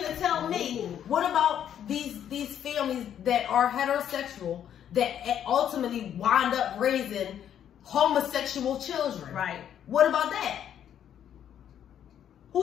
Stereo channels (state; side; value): quieter; right; 9.7 dB